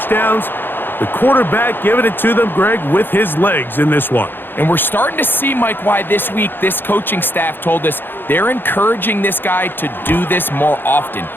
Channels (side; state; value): right; late; 0.098 ms